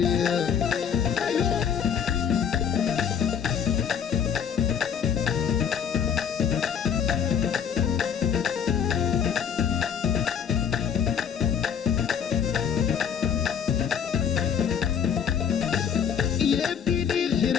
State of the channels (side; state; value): right; quieter; 7.8 dB